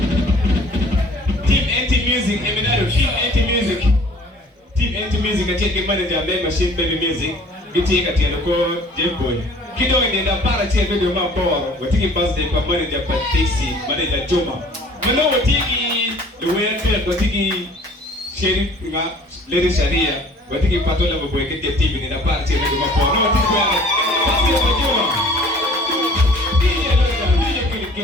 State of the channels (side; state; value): both; normal; correlation 0.52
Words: Team Anti-Music, Eminado, Team Anti-Music. Team Anti-Music, Katia Manager May Machine Baby Music, Katia Dialoko, Jimbo. Kido nenda para tia video maboro, watiki birthday kwa manager Patixi, manager Joma. Mano watiki luwende watiki sheriff nga lady Sharia, watiki Patola mboekete TV nenda para tia video maboro. No watiki kwa basi ya Joma.